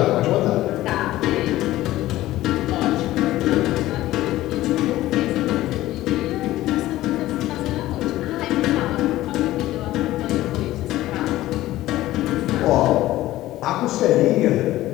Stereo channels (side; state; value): right; quieter; 15.7 dB